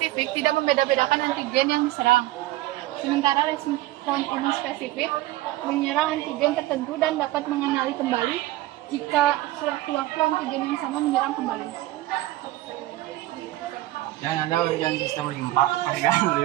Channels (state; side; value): quieter; left; 16.9 dB